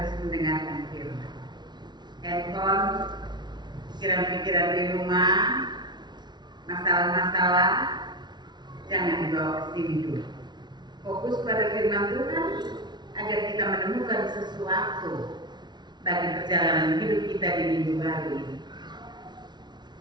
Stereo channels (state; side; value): late; left; 0.20 ms